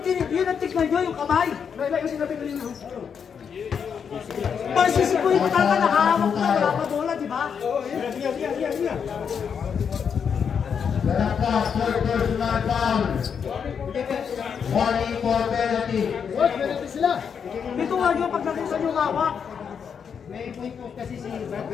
ang tignan nyo, yung kamay. Parang si Sikoy pa talaga, nakahawak na, wala pa bola, di ba? Berangkat third personal foul. Warning for penalty. Dito nga nyo, pag nakita nyo hawak.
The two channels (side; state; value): right; quieter; 7.0 dB